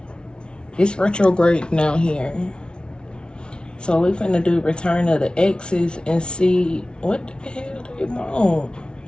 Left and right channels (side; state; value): right; late; 0.056 ms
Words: it's retrograde now here. So we finna do return of the exes and see what the hell they want.